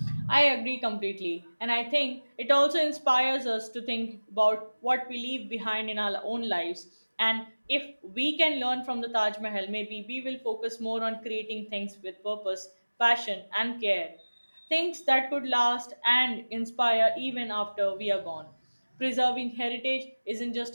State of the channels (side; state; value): both; inverted; correlation -1.00